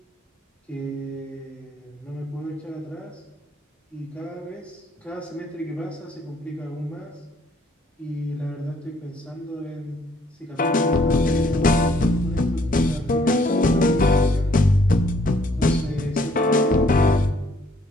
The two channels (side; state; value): both; normal; correlation 0.65